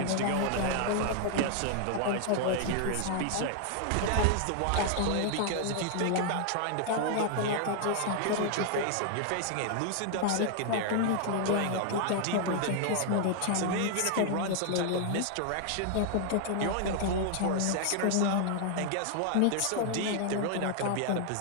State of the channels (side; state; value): both; different; correlation 0.00